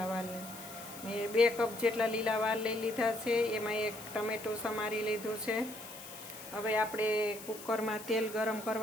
વાલ મેં 2 કપ જેટલા લીલા વાલ લઈ લીધા છે, એમાં 1 ટમેટું સમારી લીધું છે। હવે આપણે કુકરમાં તેલ ગરમ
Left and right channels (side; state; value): left; noise; hiss, 14 dB below the sound